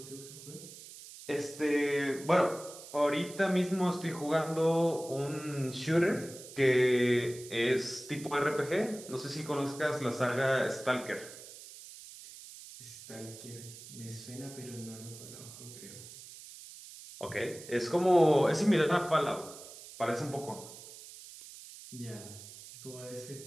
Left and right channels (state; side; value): noise; right; hiss, 15 dB below the sound